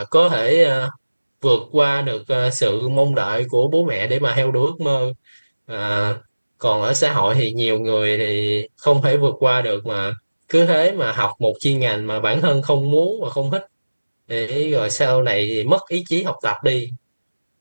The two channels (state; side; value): inverted; both; correlation -1.00